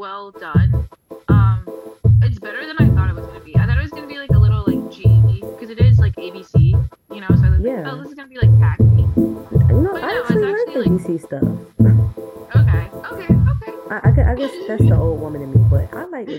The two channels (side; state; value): both; identical; correlation 1.00